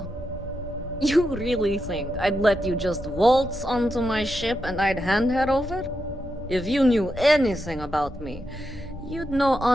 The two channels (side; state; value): both; normal; correlation 0.86